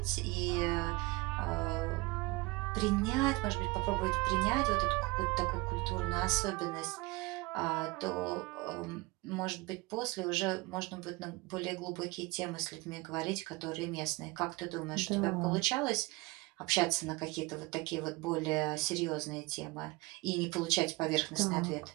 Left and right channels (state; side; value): quieter; left; 23.4 dB